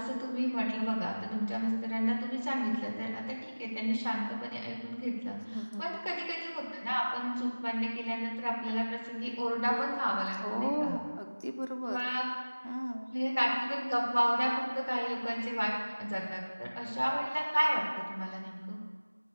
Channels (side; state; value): both; inverted; correlation -1.00